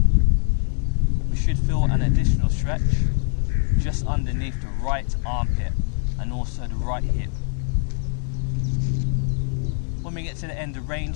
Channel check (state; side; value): silent; right; digital silence